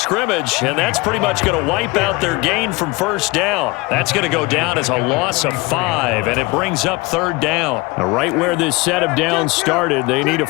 and that's pretty much going to wipe out their gain from 1st down. That's going to go down as a loss of 5, and it brings up 3rd down. Now, right where this set of downs started, they need a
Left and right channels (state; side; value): quieter; right; 23.8 dB